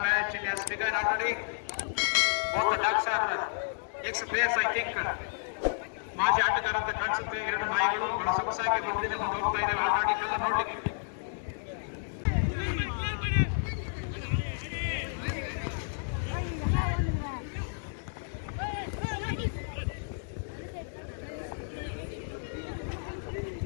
match, it has begun already. Both the ducks are ex-players, I think. ಮಾಜಿ ಆಟಗಾರಂತ ಕಾಣಿಸುತ್ತೆ. ಎರಡು ನಾಯಿಗಳು ಬಹಳ ಸೊಗಸಾಗಿ ಮುಂದೆ ಹೋಗ್ತಾ ಇದ್ದಾವೆ ಆಟ ಆಡಿಕೆಲ್ಲ ನೋಡ್ಲಿಕ್ಕೆ.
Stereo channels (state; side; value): silent; right; digital silence